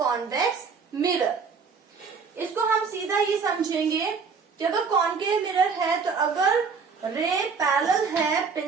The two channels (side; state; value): left; quieter; 5.4 dB